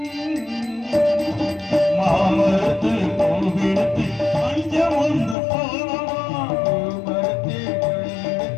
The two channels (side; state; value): right; drops out; at 5.4 s